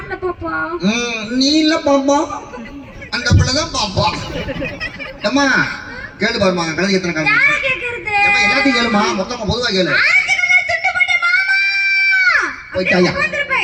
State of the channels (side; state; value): both; identical; correlation 1.00